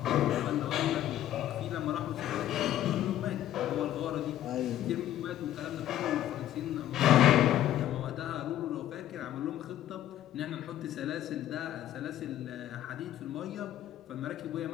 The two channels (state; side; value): quieter; right; 12.5 dB